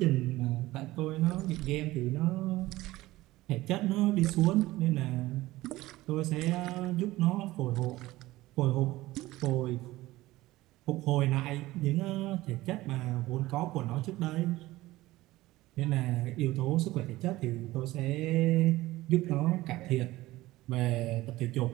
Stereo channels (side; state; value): left; quieter; 17.8 dB